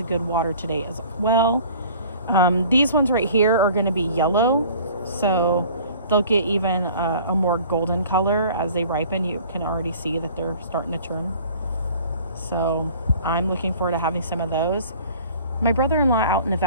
good water today as well. These ones right here are going to be yellow, so they'll get even a more golden color as they ripen. You can already see that they're starting to turn. So I'm looking forward to having some of those. My brother-in-law out in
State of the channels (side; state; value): both; inverted; correlation -0.48